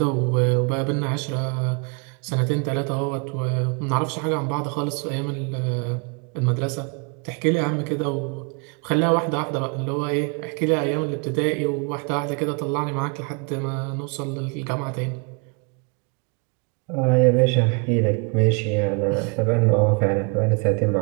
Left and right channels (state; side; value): quieter; left; 33.0 dB